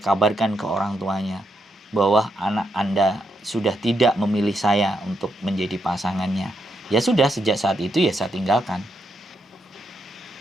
ke orang tuanya bahwa anak Anda sudah tidak memilih saya untuk menjadi pasangannya. Ya sudah, sejak saat itu ya saya tinggalkan.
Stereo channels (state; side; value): normal; both; correlation 0.80